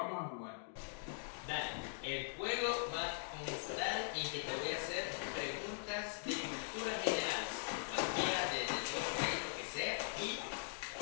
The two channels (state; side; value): silent; right; digital silence